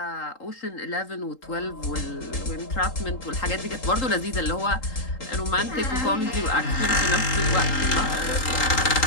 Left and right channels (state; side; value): late; right; 3.8 ms